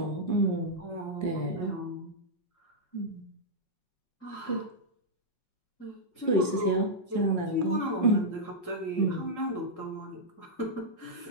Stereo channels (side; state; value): right; late; 5.5 ms